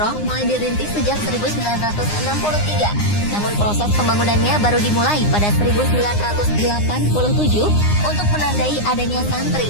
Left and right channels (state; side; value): late; right; 9.7 ms